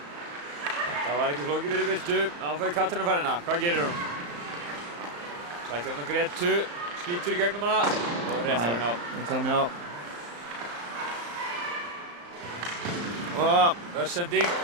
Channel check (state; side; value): late; left; 34 ms